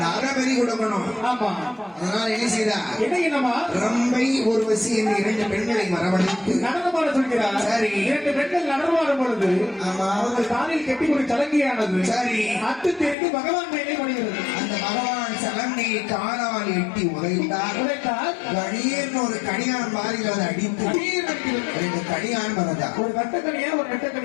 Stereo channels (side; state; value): right; drops out; at 13.2 s